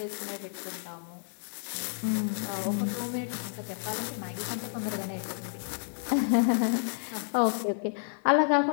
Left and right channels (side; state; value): right; silent; digital silence